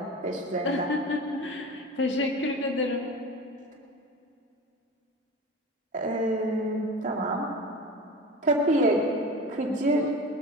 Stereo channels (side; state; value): both; normal; correlation 0.33